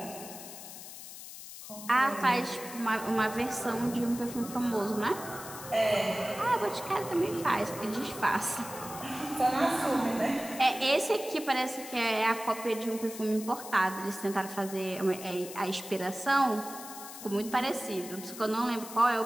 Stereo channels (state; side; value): noise; left; hiss, 12 dB below the sound